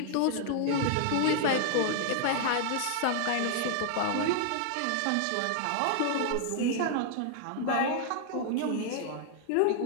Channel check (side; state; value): both; different; correlation 0.00